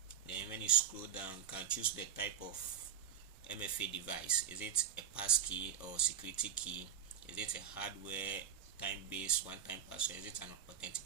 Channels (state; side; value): quieter; left; 8.9 dB